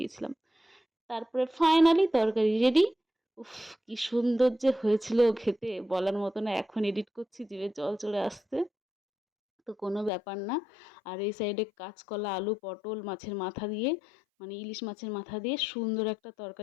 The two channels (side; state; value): right; drops out; at 10.1 s